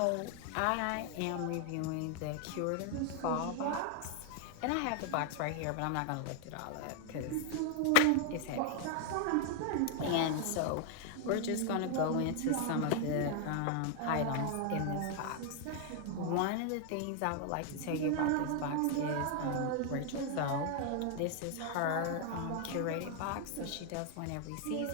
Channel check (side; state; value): both; different; correlation 0.00